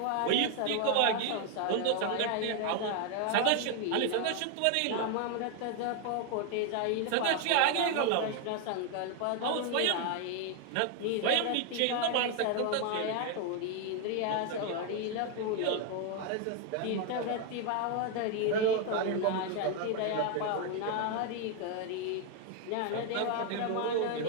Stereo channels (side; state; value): both; different; correlation 0.01